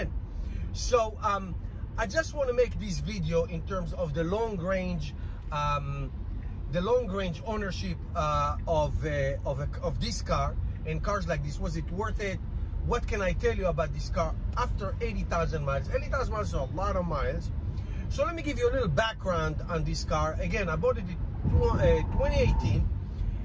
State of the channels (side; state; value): both; identical; correlation 1.00